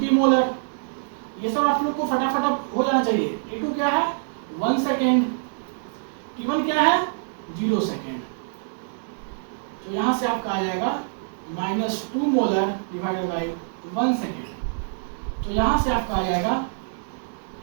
मोलर। ये सब आप लोग को फटाफट हो जाना चाहिए। T2 क्या है? 1 सेकेंड। T1 क्या है? 0 सेकेंड। तो यहां से आपका आ जाएगा -2 मोलर डिवाइडेड बाय 1 सेकेंड। तो यहां से आपका आ जाएगा,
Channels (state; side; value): silent; left; 62 dB below the other